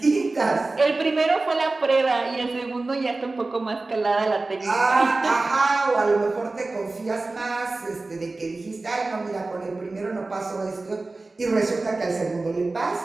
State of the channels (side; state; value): left; quieter; 3.3 dB